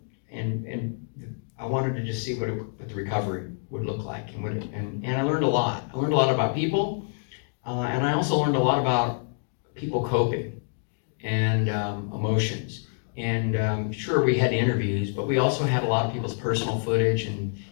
I wanted to just see what the recovery would look like. And I learned a lot. I learned a lot about people. And I also learned a lot about people coping and emotions. And sure, we had interviews, but we also had a lot of people's personal footage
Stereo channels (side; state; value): right; silent; digital silence